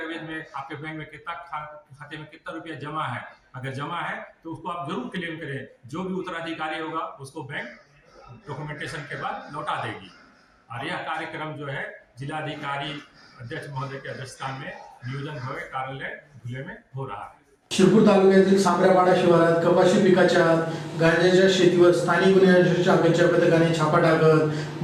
में आपके बैंक में कितना खाते में कितना रुपया जमा है. अगर जमा है तो उसको आप जरूर क्लेम करें. जो भी उत्तराधिकारी होगा उसको बैंक डॉक्यूमेंटेशन के बाद लौटा देगी. और यह कार्यक्रम जो है जिलाधिकारी अध्यक्ष महोदय के अध्यक्षता में नियोजन भवन कार्यालय धुले में हो रहा है. शिरपूर तालुक्यातील सांबऱ्यापाडा शिवारात कपाशी पिकाच्या गांजाच्या शेतीवर स्थानिक गुन्हे अन्वेषण शाखेच्या पथकाने छापा टाकत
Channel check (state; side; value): identical; both; correlation 1.00